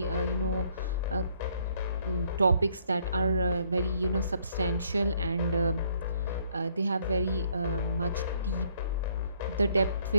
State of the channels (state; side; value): inverted; both; correlation -0.66